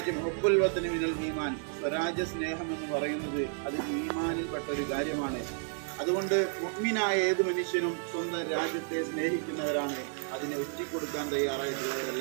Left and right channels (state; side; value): silent; left; 57 dB below the other